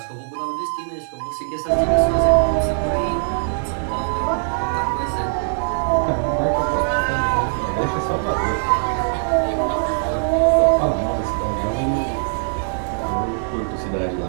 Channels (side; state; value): left; silent; 65 dB below the other